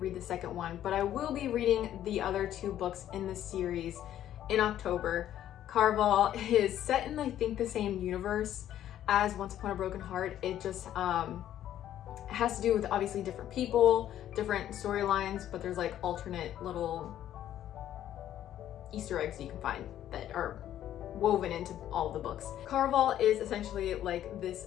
the second one. But I will be reading the other 2 books in this series in October. Carval is set in I think the same universe as Once Upon a Broken Heart. It just has to do with obviously different people, different storylines, but there's like alternate little Easter eggs you can find that are woven into all of the books. Carval is essentially like this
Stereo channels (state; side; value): quieter; right; 11.6 dB